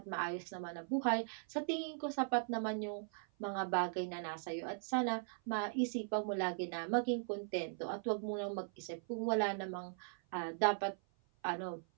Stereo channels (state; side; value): silent; left; 52 dB below the other